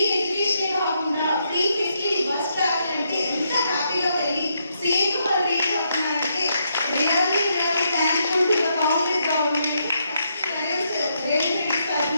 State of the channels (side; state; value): both; inverted; correlation -0.77